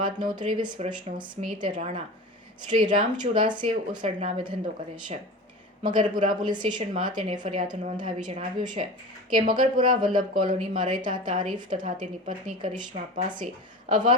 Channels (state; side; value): normal; both; correlation 0.33